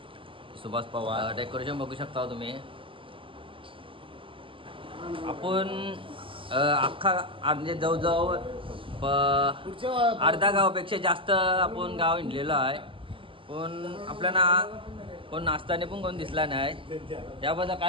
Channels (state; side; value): late; left; 0.25 ms